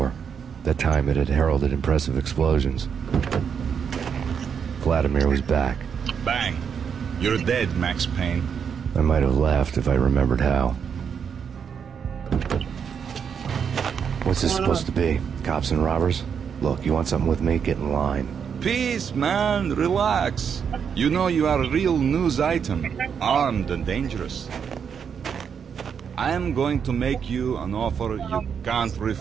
That time it had heralded impressive explosions. Vladimir was back. Bang! You're dead, Max Payne. I might have laughed if I remembered how. What's this supposed to be? Cops and robbers? Look, you want something with me? Get in line. Peace, man. Relax. You know you are a real news item. Armed and dangerous. I am going to make you an offer you can't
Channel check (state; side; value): quieter; left; 7.2 dB